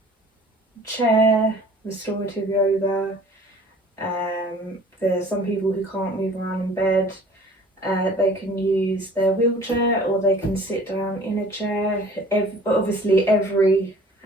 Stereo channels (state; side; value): normal; both; correlation 0.49